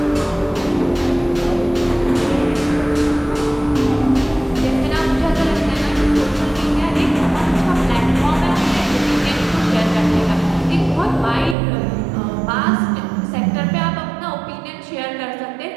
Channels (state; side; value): drops out; left; at 11.6 s